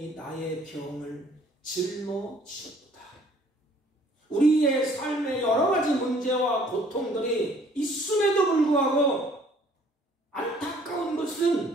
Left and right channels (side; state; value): both; normal; correlation 0.58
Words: 나의 병을 짊어지셨도다. 우리의 삶의 여러 가지 문제와 고통들이 있음에도 불구하고 안타까운